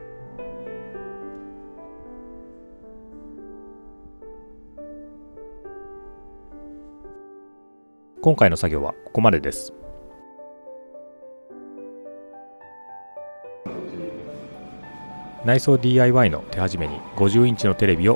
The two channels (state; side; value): inverted; both; correlation -1.00